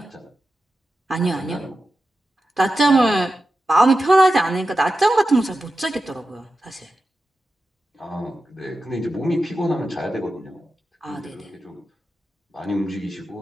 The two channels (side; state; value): both; normal; correlation 0.92